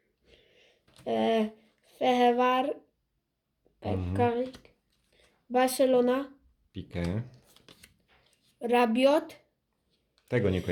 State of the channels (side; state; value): both; identical; correlation 1.00